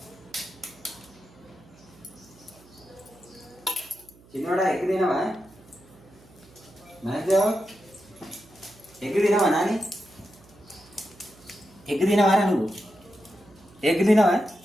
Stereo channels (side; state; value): right; noise; hum, 25 dB below the sound